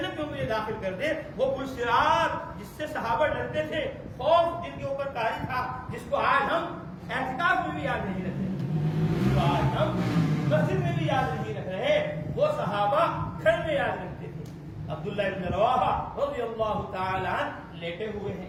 میں مجھے داخل کر دے۔ وہ پل صراط جس سے صحابہ ڈرتے تھے، خوف جن کے اوپر طاری تھا، جس کو آج ہم اعتکاف میں بھی یاد نہیں رکھتے، جس کو آج ہم مسجد میں بھی یاد نہیں رکھ رہے، وہ صحابہ گھر میں یاد رکھتے تھے۔ عبداللہ ابن رواحہ رضی اللہ تعالی عنہ لیٹے ہوئے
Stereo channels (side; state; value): both; identical; correlation 1.00